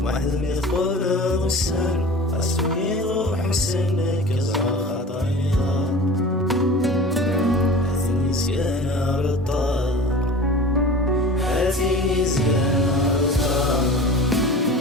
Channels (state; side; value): normal; both; correlation 0.38